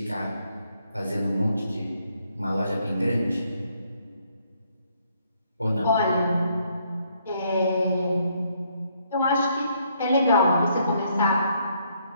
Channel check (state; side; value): inverted; both; correlation -0.70